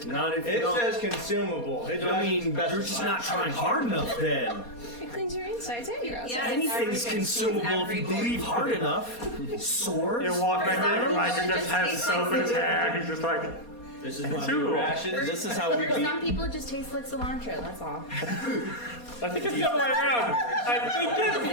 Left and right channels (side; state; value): right; late; 4.2 ms